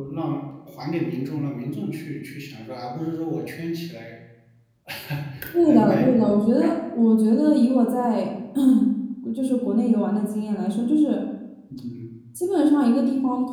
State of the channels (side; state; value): both; identical; correlation 1.00